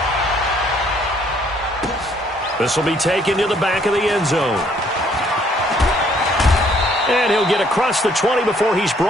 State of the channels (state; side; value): normal; both; correlation 0.64